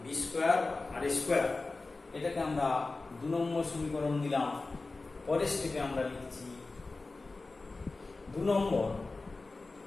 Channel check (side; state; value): right; quieter; 3.5 dB